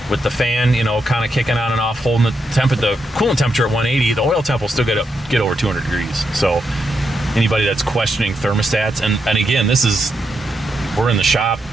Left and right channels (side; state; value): both; normal; correlation 0.83